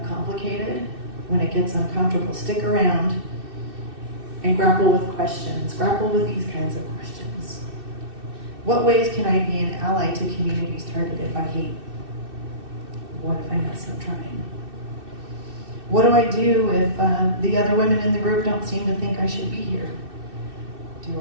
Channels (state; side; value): late; left; 2.6 ms